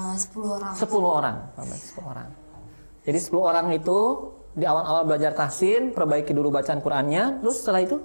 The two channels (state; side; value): inverted; both; correlation -1.00